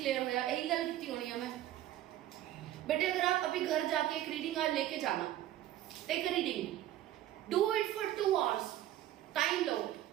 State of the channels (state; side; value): quieter; left; 13.3 dB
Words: होया यही गल की होनी है मैं। बेटे अगर आप अभी घर जाके एक रीडिंग आज लेके जाना, take reading, do it for 2 hours, time लो।